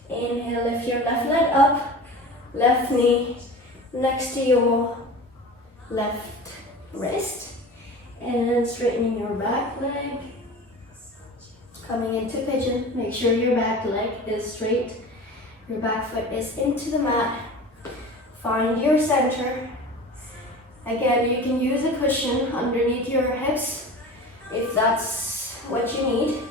Inhale, lift your left leg up, left knee next to your left wrist. And straightening your back leg. Coming into pigeon, make sure your back leg is straight. Your back foot is into the mat. Find your center. Again, you can use a cushion underneath your hips if that's what you need.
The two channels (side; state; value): both; normal; correlation 0.36